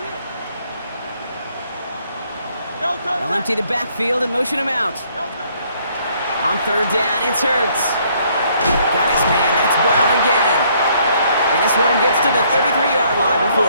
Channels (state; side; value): inverted; both; correlation -0.66